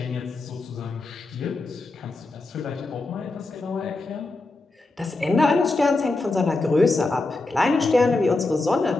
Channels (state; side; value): quieter; right; 3.2 dB